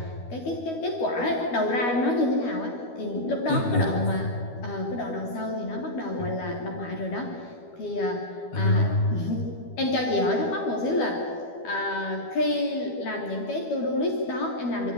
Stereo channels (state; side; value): late; right; 12 ms